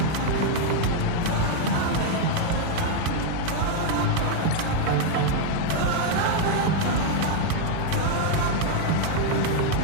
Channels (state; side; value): different; both; correlation 0.00